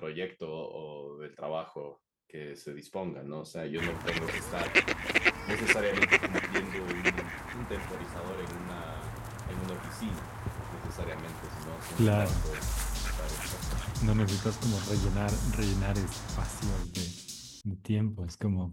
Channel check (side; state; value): both; identical; correlation 1.00